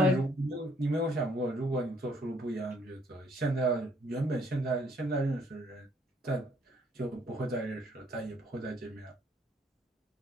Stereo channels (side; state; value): both; normal; correlation 0.66